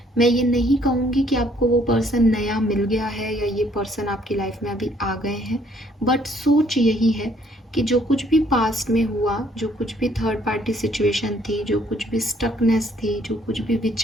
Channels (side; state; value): both; normal; correlation 0.64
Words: मैं ये नहीं कहूँगी कि आपको वो पर्सन नया मिल गया है या ये पर्सन आपकी लाइफ में अभी आ गए हैं, बट सोच यही है कि जो कुछ भी पास्ट में हुआ, जो कुछ भी थर्ड पार्टी सिचुएशन थी, जो कुछ भी स्टकनेस थी, जो कुछ भी